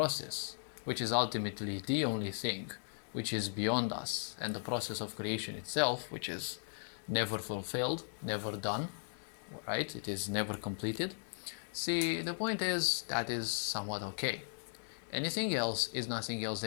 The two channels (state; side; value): silent; right; digital silence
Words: which is ultimately the only thing which is beyond us, and the process of creation itself, which is never fulfilled, never done, right? It is never completed. See, the point is that is somewhat okay. Anything else is nothing else